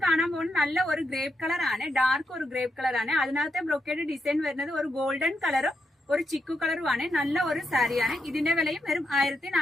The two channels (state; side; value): normal; both; correlation 0.83